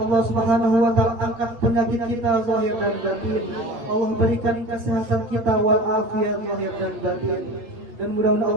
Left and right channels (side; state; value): left; late; 8.3 ms